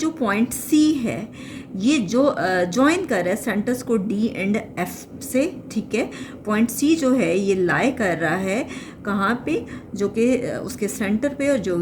पॉइंट सी है ये जो ज्वाइन कर रहा है सेंटर्स को डी एंड एफ से, ठीक है। पॉइंट सी जो है ये लाई कर रहा है कहाँ पे, जो कि उसके सेंटर पे, और जो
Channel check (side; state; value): both; identical; correlation 1.00